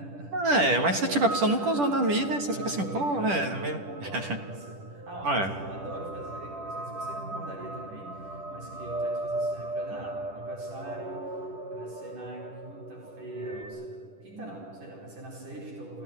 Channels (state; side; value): late; left; 10 ms